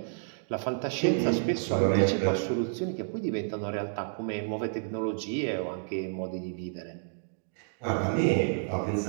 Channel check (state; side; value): silent; left; digital silence